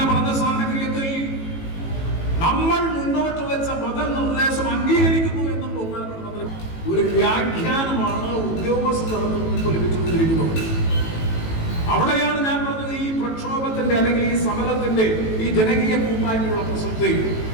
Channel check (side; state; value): right; late; 18 ms